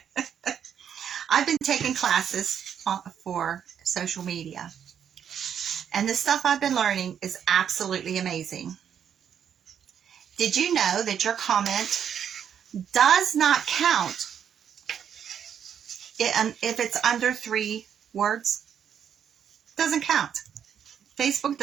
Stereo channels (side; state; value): left; quieter; 8.5 dB